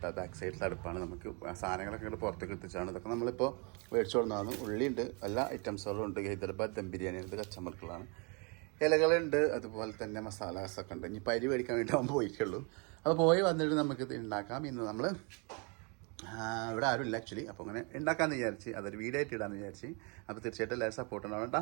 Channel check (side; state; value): left; quieter; 33.3 dB